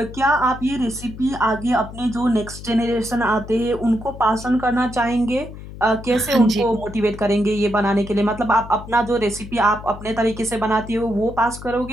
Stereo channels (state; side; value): noise; left; hum, 13 dB below the sound